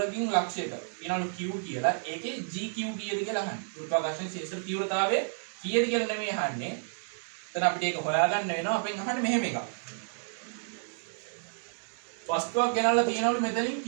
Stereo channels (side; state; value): left; silent; digital silence